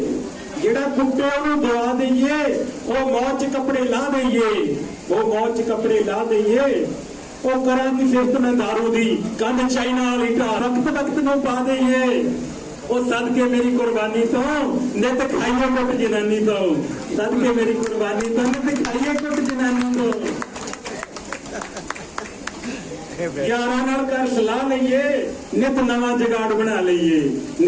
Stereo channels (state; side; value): identical; both; correlation 1.00